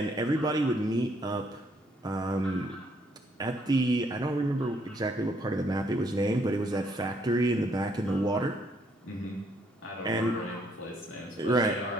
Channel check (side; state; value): both; normal; correlation 0.69